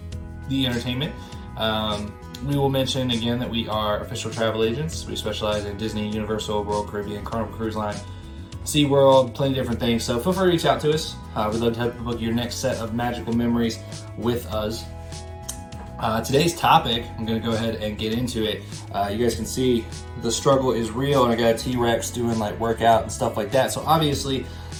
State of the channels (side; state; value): both; identical; correlation 1.00